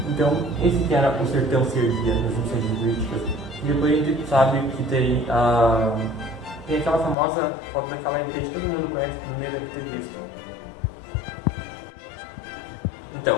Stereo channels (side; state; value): right; drops out; at 7.2 s